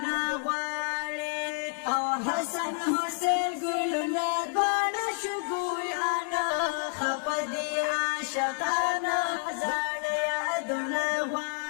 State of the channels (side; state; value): right; silent; digital silence